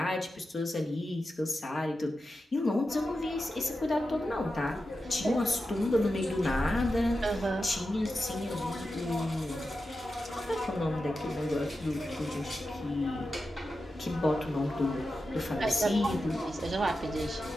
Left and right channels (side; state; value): both; normal; correlation 0.91